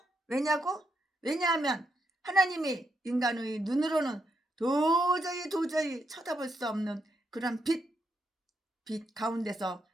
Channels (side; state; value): both; normal; correlation 0.80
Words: 왜냐하면 하나님이 인간의 눈으로는 도저히 쳐다볼 수 없는 그런 빛 가운데서